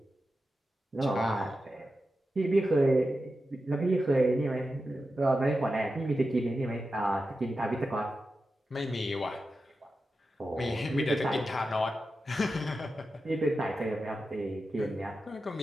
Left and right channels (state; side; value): normal; both; correlation 0.91